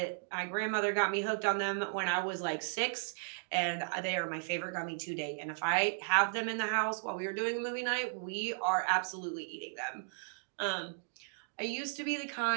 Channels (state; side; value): silent; left; digital silence